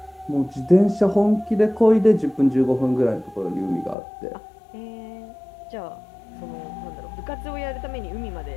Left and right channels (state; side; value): drops out; right; at 4.0 s